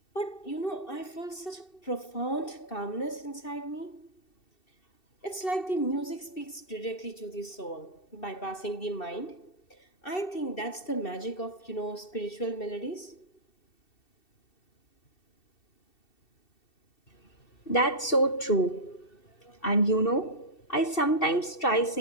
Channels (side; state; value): right; late; 2.7 ms